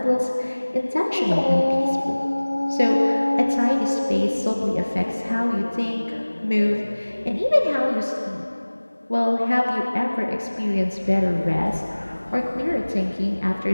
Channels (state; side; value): inverted; both; correlation -1.00